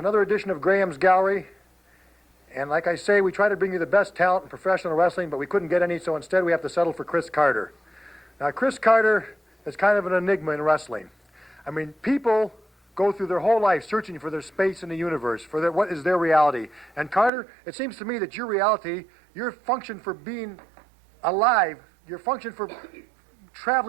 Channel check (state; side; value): drops out; left; at 17.3 s